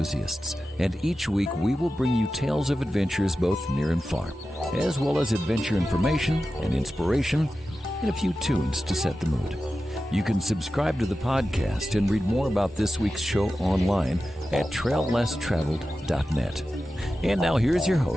and each week we will bring you tales of adventures both near and far, as well as adventure information and inspiration, and a few tunes to set the mood. You can subscribe to the podcast and read more about this week's show online at traillesstraveled.net. And now here's your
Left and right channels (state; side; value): normal; both; correlation 0.93